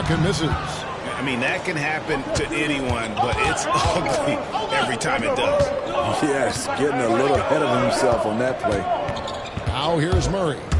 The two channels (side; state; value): both; identical; correlation 1.00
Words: misses. I mean, that can happen to anyone, but it's ugly every time it does. Yes, getting a little ahead of himself on that play. Now here's Murray.